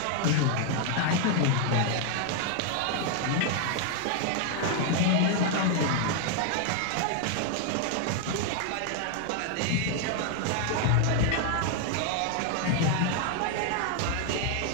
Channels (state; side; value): different; both; correlation 0.00